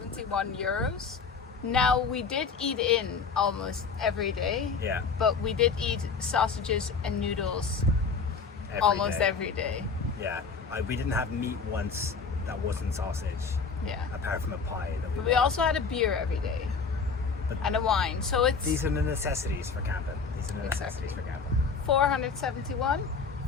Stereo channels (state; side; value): quieter; right; 5.2 dB